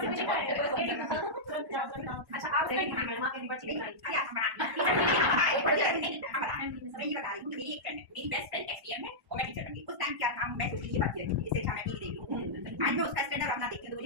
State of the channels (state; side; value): late; left; 1.1 ms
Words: अच्छा आप मैडम आपने बच्ची नहीं मेरी बेस्ट फ्रेंड एक्सपीरियंस है और मैं टीचर बनगी। उस टाइम क्या काम मैं सोची बात की इससे अच्छा मैं टीवी देख लूं। आज मैं उसका स्टैंडर्ड अपना देखती हूं तो